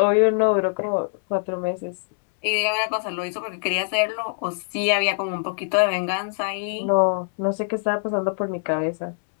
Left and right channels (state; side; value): silent; right; 63 dB below the other